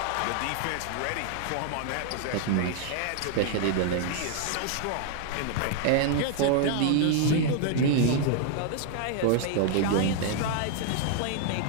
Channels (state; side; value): different; both; correlation 0.00